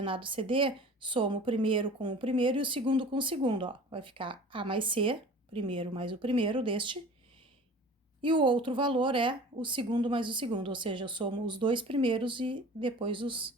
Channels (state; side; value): normal; both; correlation 0.42